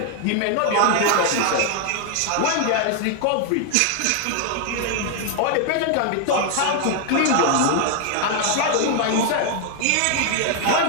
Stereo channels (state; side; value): different; both; correlation 0.00